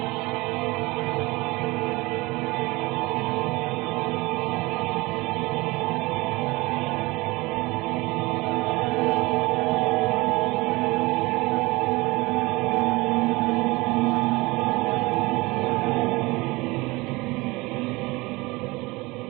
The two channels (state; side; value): quieter; left; 22.8 dB